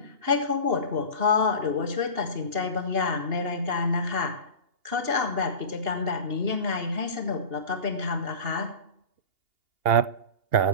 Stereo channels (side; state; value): left; late; 2.8 ms